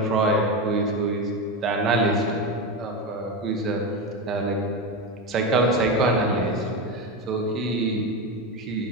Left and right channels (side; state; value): both; normal; correlation 0.16